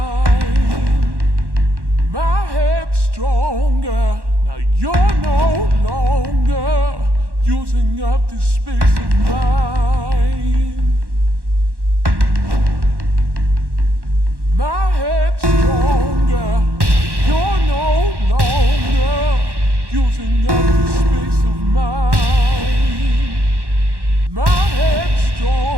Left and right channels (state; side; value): late; left; 1.1 ms